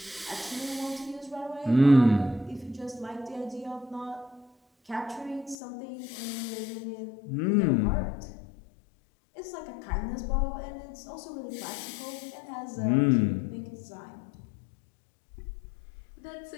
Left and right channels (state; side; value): drops out; right; at 5.6 s